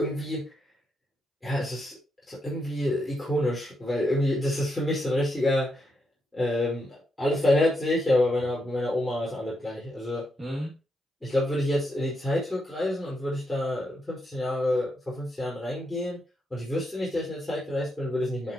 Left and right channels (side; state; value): both; normal; correlation 0.81